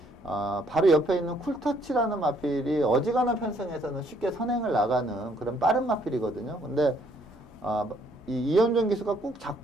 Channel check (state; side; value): normal; both; correlation 0.66